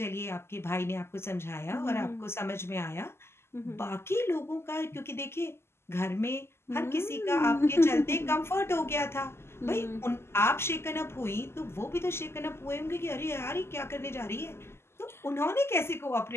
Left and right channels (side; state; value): right; late; 0.12 ms